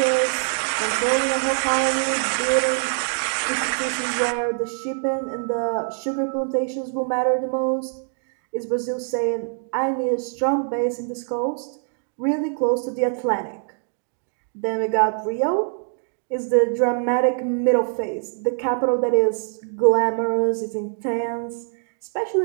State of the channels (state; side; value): silent; left; 63 dB below the other